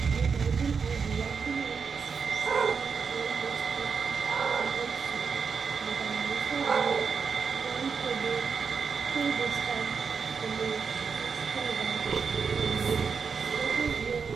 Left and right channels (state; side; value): quieter; left; 5.7 dB